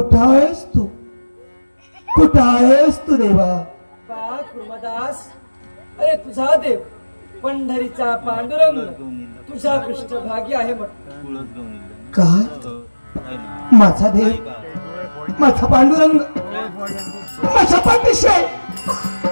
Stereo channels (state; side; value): inverted; both; correlation -1.00